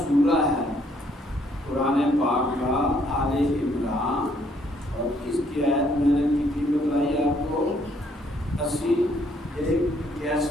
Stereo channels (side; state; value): both; normal; correlation 0.67